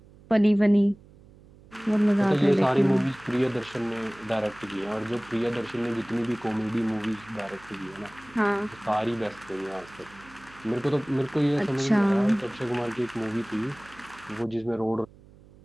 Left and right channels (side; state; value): right; noise; hum, 24 dB below the sound